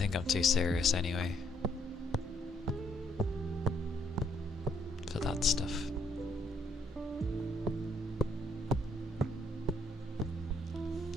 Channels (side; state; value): both; normal; correlation 0.70